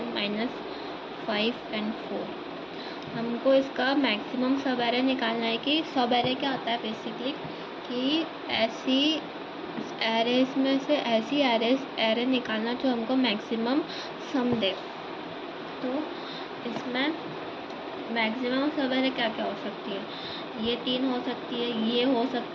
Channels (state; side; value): identical; both; correlation 1.00